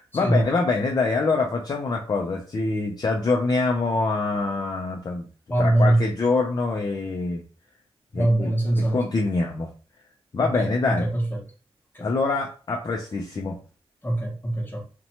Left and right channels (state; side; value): normal; both; correlation 0.80